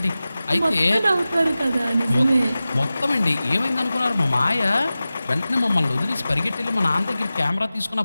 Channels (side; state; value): both; inverted; correlation -0.96